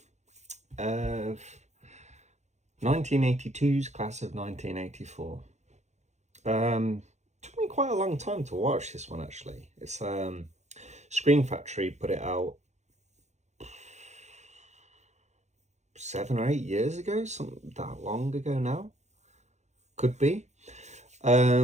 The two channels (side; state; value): left; late; 0.33 ms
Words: of 1982's class of 1984. Took me quite a long time to watch this one, actually. It's Screen Factory put it out 7 or 8 years ago, something that long ago now. Could be.